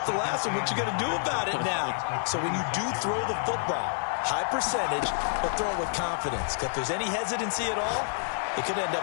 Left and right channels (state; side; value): silent; right; digital silence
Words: the last one. What you going to do about it now? So when you do throw the football, high percentage, but throw it with confidence. If there's any hesitancy at all, it could end